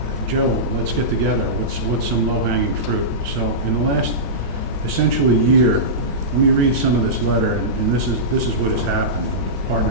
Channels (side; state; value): both; normal; correlation -0.17